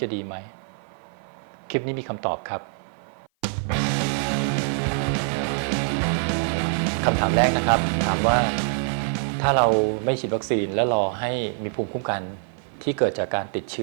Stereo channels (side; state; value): left; silent; 55 dB below the other